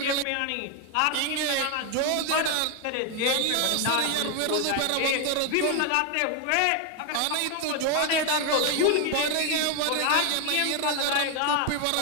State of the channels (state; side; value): different; both; correlation 0.01